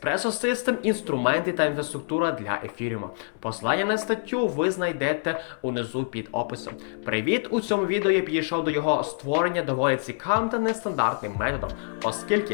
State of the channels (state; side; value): silent; right; 61 dB below the other